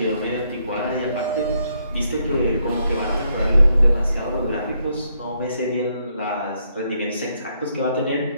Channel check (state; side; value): inverted; both; correlation -0.75